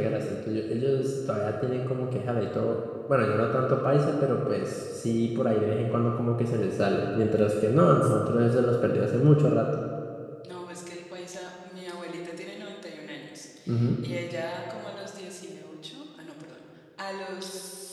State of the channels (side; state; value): both; identical; correlation 1.00